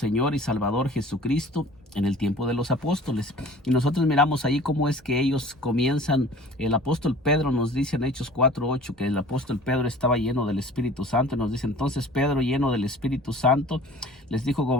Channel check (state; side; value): normal; both; correlation 0.46